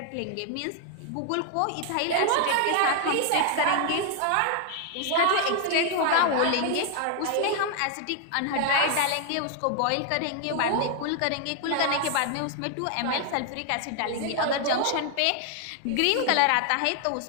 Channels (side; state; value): both; different; correlation 0.00